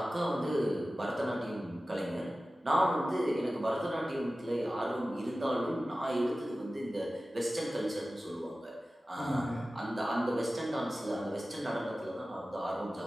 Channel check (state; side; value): normal; both; correlation 0.96